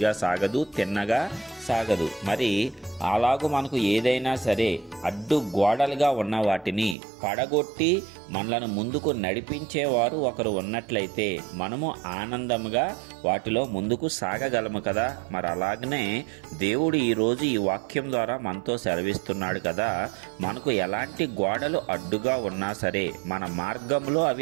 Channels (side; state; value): left; drops out; at 7.0 s